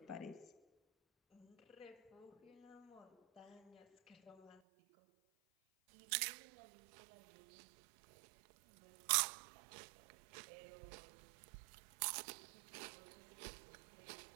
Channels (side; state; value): left; drops out; at 4.6 s